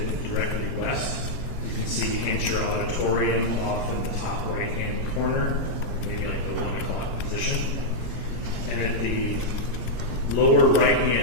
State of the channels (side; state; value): right; late; 19 ms